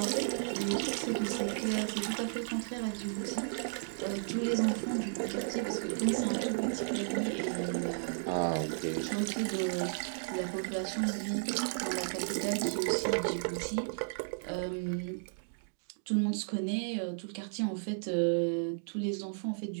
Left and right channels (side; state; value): left; silent; digital silence